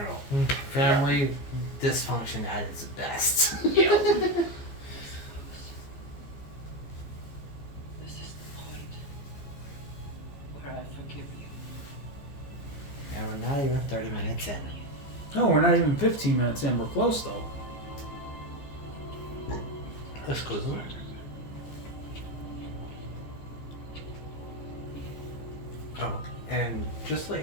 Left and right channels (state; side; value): late; right; 14 ms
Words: Family dysfunction at its best. Yeah. This is the point where I forgive you. And we're not even 30 minutes in. No, we're not even 15 minutes in. We're close, though. Exclusive. Oh, and just to let